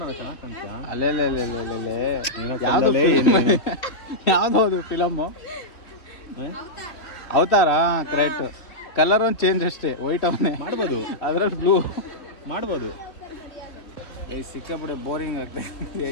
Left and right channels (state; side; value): late; right; 2.9 ms